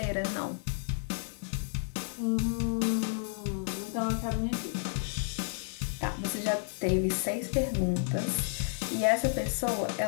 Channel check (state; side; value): silent; right; digital silence